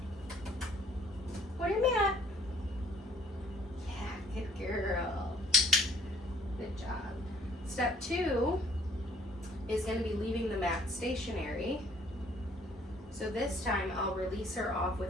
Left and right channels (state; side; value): normal; both; correlation 0.60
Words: Where your mat? Yeah, good girl. Good job. Step 2 is going to be leaving the mat stationary. So this time I'll release her off